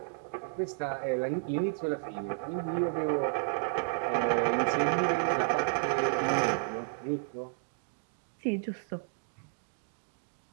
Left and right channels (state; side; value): silent; left; digital silence